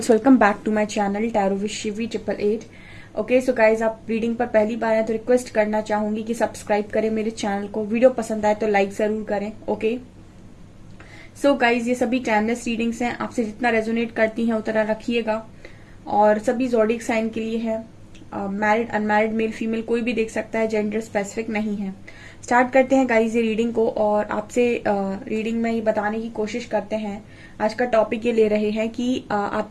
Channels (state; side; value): identical; both; correlation 1.00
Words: welcome back to my channel tarot with Shivi 888। Okay so guys, आप रीडिंग पर पहली बार आए तो रिक्वेस्ट करना चाहूंगी कि सब्सक्राइब करें मेरे चैनल को। वीडियो पसंद आए तो लाइक जरूर करें। ओके सो गाइज, ये सभी टाइमलेस रीडिंग्स हैं, आपसे जितना रेजोनेट करती हैं उतना रखिएगा। और सभी जोडिक साइन के लिए है। मैरिड अनमैरिड मेल फीमेल कोई भी देख सकता है, जेंडर स्पेसिफिक नहीं है। स्टार्ट करते हैं गाइज ये रीडिंग को, और आपसे रीडिंग में ये बताने की कोशिश करते हैं। आज का टॉपिक ये ले रहे हैं कि